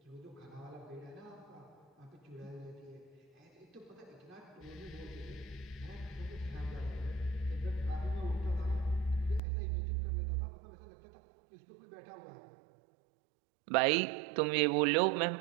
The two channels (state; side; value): drops out; left; at 9.4 s